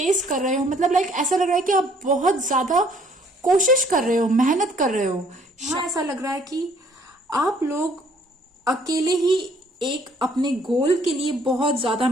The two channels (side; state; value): both; normal; correlation 0.61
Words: कर रहे हो। मतलब लाइक ऐसा लग रहा है कि आप बहुत ज्यादा कोशिश कर रहे हो, मेहनत कर रहे हो। हाँ, ऐसा लग रहा है कि आप लोग अकेले ही एक अपने गोल के लिए बहुत ज्यादा